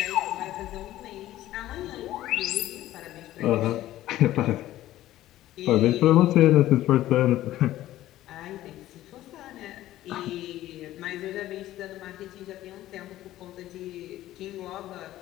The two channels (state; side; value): quieter; right; 14.5 dB